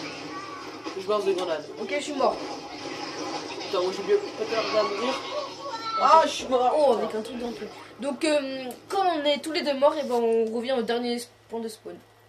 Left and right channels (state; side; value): identical; both; correlation 1.00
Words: Je lance des grenades. Ok, je suis mort. Putain, moi j'ai bien pas à mourir. Ah, je suis mort. Oh, avec un truc dans le truc. Donc, quand on est tous les deux morts, et ben on revient au dernier point de spawn.